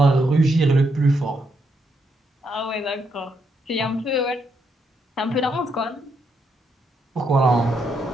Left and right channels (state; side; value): normal; both; correlation 0.78